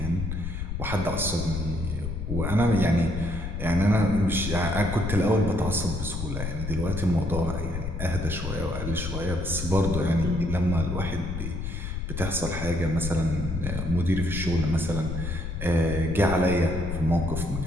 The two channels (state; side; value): noise; left; rumble, 4 dB below the sound